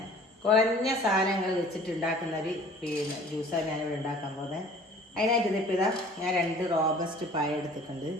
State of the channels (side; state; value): both; normal; correlation 0.49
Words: കുറഞ്ഞ സാധനങ്ങൾ വെച്ചിട്ട് ഉണ്ടാക്കുന്നൊരു ജ്യൂസാണ് ഞാനിവിടെ ഉണ്ടാക്കാൻ പോകുന്നത്. അതിനായിട്ട് ഇതിപ്പോൾ ഞാൻ 2 റോബസ്റ്റ് പായ എടുത്തിട്ടുണ്ട്.